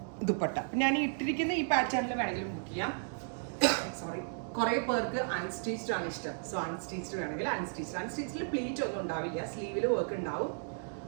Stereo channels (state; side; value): silent; left; digital silence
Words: dupatta. ഞാൻ ഇട്ടിരിക്കുന്ന ഈ പാറ്റേണിൽ വേണമെങ്കിലും ബുക്ക് ചെയ്യാം. സോറി, കുറെ പേർക്ക് അൺസ്റ്റിച്ച്ഡ് ആണ് ഇഷ്ടം. സോ അൺസ്റ്റിച്ച്ഡ് വേണമെങ്കിൽ അൺസ്റ്റിച്ചിൽ പ്ലീറ്റ് ഒന്നും ഉണ്ടാവില്ല, സ്ലീവിൽ വർക്ക് ഉണ്ടാവും,